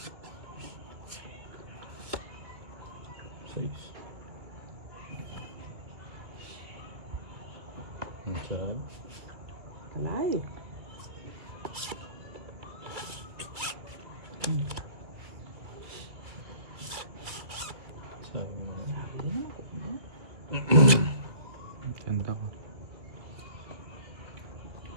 Kalay. Ganda ko.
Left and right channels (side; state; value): left; late; 2.3 ms